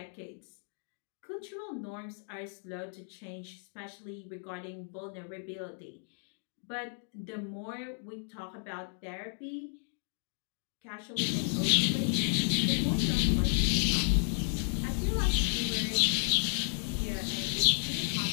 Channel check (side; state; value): right; silent; 56 dB below the other